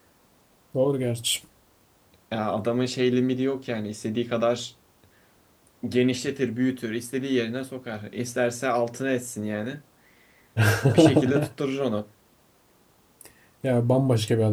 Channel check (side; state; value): both; identical; correlation 1.00